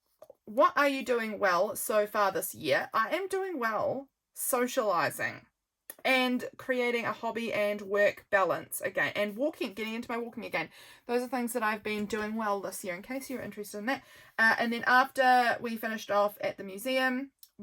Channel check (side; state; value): both; identical; correlation 1.00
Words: well so far this year? I am doing well socializing and creating a hobby and work balance again, and getting into my walking again. Those are things that I've been doing well this year, in case you're interested in that. And then after we finished off at the museum,